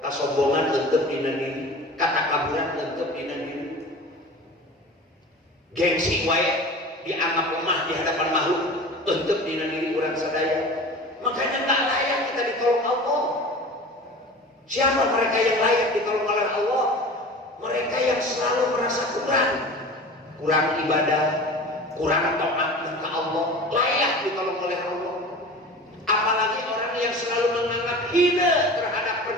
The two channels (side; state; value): both; normal; correlation 0.37